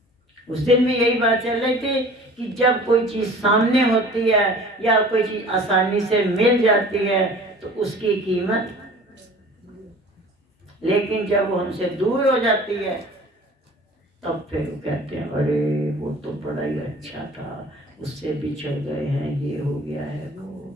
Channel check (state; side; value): normal; both; correlation 0.45